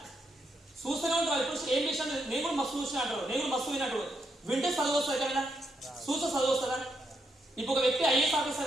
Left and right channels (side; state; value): both; normal; correlation 0.80